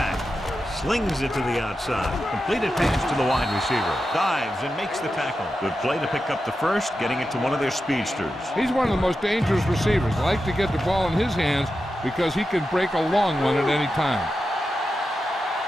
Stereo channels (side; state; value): both; normal; correlation 0.90